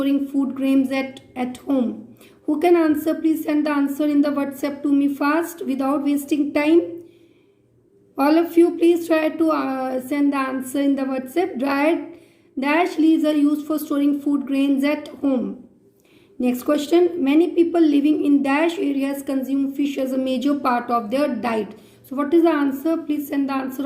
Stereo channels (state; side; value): identical; both; correlation 1.00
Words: food grains at home. Who can answer? Please send the answer in the WhatsApp to me fast without wasting time. All of you, please try to send the answer in the WhatsApp. Dried dash leaves are used for storing food grains at home. Next question. Many people living in dash areas consume fish as a major part of their diet. So what is the answer? Please send the